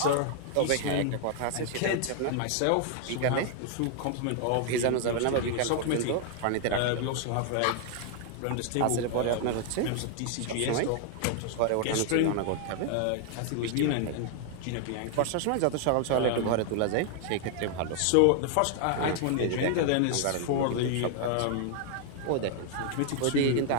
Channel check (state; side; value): different; both; correlation 0.00